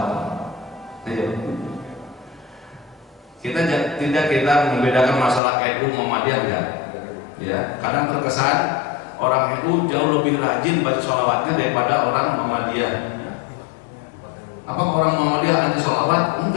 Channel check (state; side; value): drops out; right; at 5.4 s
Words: Kita membedakan masalah NU Muhammadiyah enggak? Ya, kadang terkesan orang NU jauh lebih rajin baca sholawatnya daripada orang Muhammadiyah. Apa orang Muhammadiyah anti sholawat?